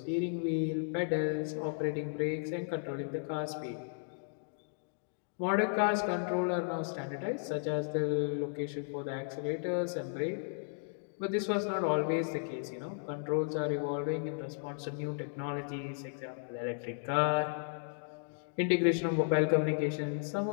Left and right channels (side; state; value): right; silent; digital silence